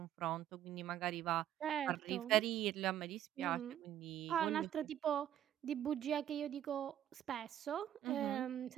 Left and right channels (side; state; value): left; quieter; 11.3 dB